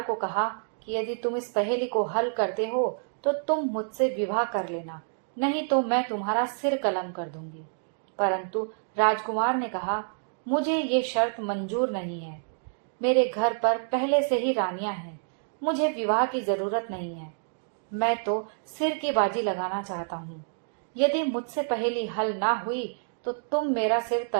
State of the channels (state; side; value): silent; left; digital silence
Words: को कहा कि यदि तुम इस पहेली को हल करते हो तो तुम मुझसे विवाह कर लेना, नहीं तो मैं तुम्हारा सिर कलम कर दूंगी। परंतु राजकुमार ने कहा, मुझे ये शर्त मंजूर नहीं है। मेरे घर पर पहले से ही रानियां हैं, मुझे विवाह की जरूरत नहीं है। मैं तो सिर की बाजी लगाना चाहता हूँ। यदि मुझसे पहेली हल ना हुई तो तुम मेरा सिर